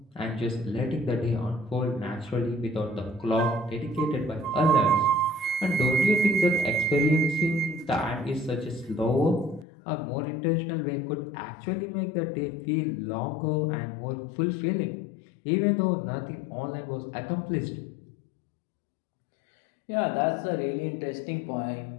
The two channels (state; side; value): drops out; right; at 9.7 s